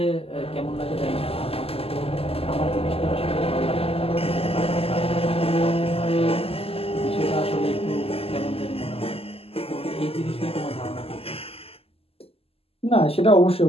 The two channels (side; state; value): right; late; 0.28 ms